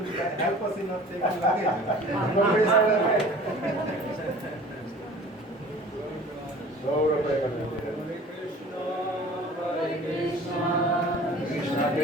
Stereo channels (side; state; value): both; normal; correlation 0.45